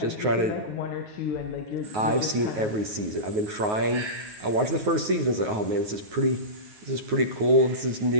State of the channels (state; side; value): late; left; 9.4 ms